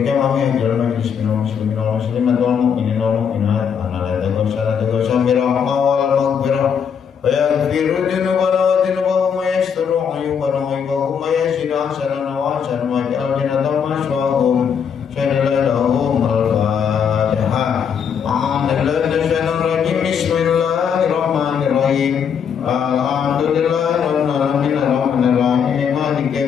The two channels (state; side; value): quieter; right; 7.3 dB